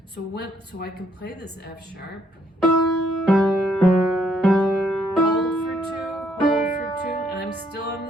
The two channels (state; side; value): normal; both; correlation 0.70